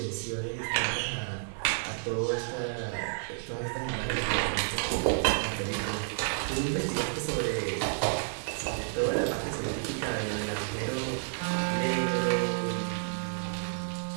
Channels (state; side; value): silent; left; 55 dB below the other